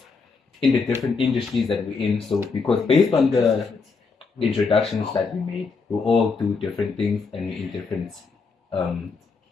in the different industries that we're in. So because based on the introductions that we made, we all do different things and we're in different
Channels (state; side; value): quieter; right; 4.7 dB